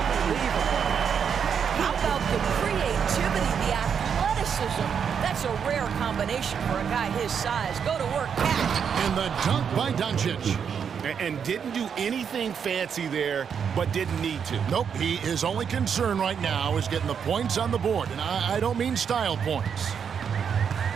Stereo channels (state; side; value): quieter; left; 7.2 dB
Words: How about the creativity, the athleticism? That's a rare combination for a guy his size. Go to work, catch. And the dunk by Doncic. And didn't do anything fancy there, but didn't need to. Nope, his only concern right now is getting the points on the board. And I don't mean style points.